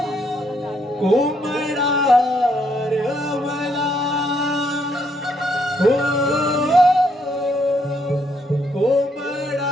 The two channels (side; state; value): both; normal; correlation 0.73